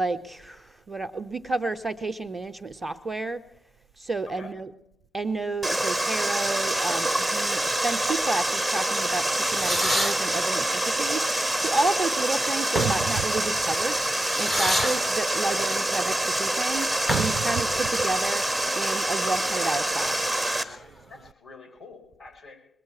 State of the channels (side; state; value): both; normal; correlation 0.91